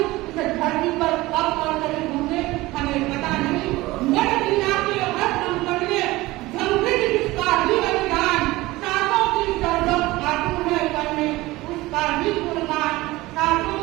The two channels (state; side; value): quieter; left; 19.4 dB